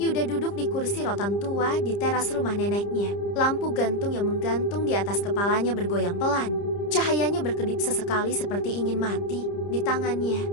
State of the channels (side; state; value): right; late; 30 ms